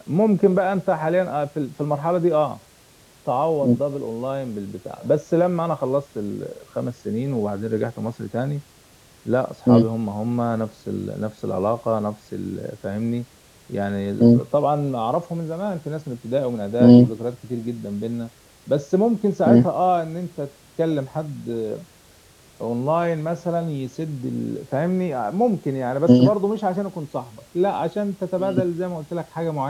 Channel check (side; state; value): both; identical; correlation 1.00